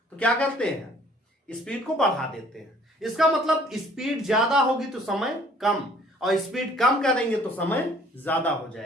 तो क्या करते हैं, स्पीड को बढ़ा देते हैं। इसका मतलब स्पीड ज्यादा होगी तो समय कम, और स्पीड कम करेंगे तो समय ज्यादा हो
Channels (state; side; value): normal; both; correlation 0.56